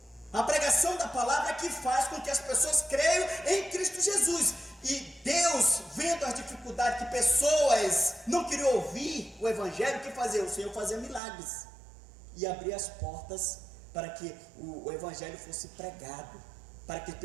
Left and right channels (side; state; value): left; drops out; at 11.2 s